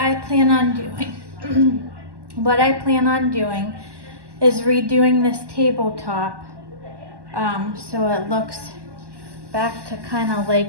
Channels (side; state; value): left; late; 1.1 ms